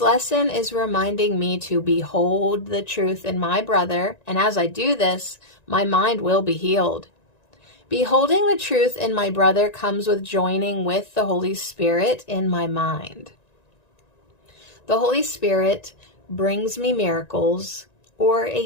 is reminding me to behold the truth in my brother, and as I do this, my mind will be healed. Beholding the truth in my brother comes with joining with the Holy Spirit in my mind. The Holy Spirit brings me miracles or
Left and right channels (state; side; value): late; right; 1.9 ms